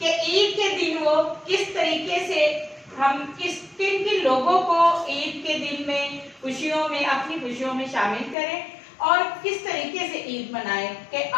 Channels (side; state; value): right; drops out; at 8.3 s